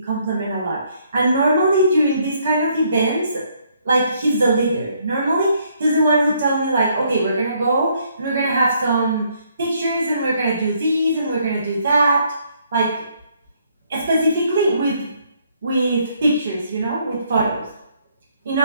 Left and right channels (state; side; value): inverted; both; correlation -0.69